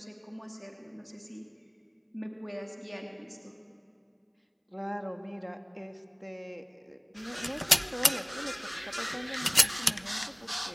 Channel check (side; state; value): both; identical; correlation 1.00